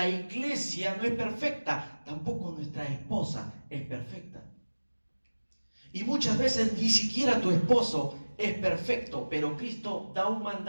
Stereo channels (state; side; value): inverted; both; correlation -1.00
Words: iglesia no es perfecta, tampoco nuestra esposa es perfecta. Y muchas veces ni siquiera tu esposo es perfecto, pero Cristo da un